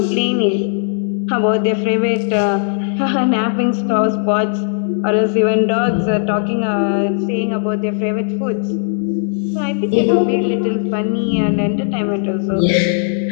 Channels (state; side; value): silent; right; digital silence